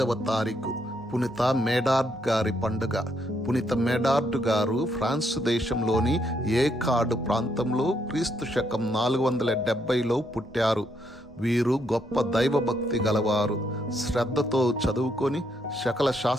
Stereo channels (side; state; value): both; normal; correlation 0.75